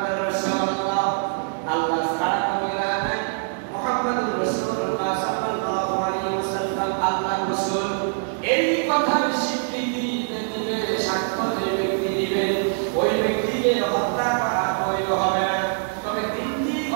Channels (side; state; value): left; silent; digital silence